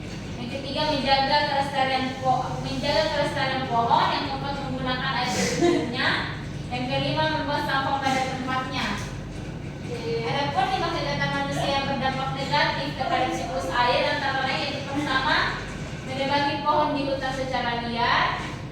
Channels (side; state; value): both; identical; correlation 1.00